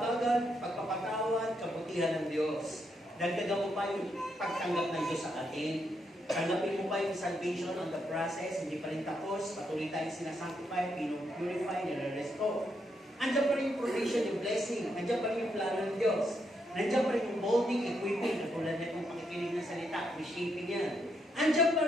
pagpapatawad, kabutihan ng Diyos. Dagdagan mo pa yung pagtanggap ng Diyos sa atin. Tanggapin mo pa yung salvation on the process, hindi pa rin tapos, patuloy tayong sinasanctify, pinupurify, nire-restore. Andiyan pa rin yung provision, yung blessing, andiyan pa rin yung plano ng Diyos. Nandiyan pa rin yung molding, equipping, katulad na itong pakikinig ng salita, reshaping yan. Andiyan pa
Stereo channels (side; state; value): both; normal; correlation 0.79